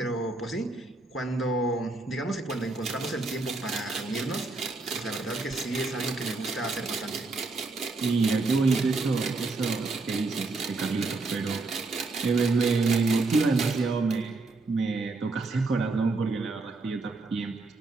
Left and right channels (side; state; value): left; quieter; 3.5 dB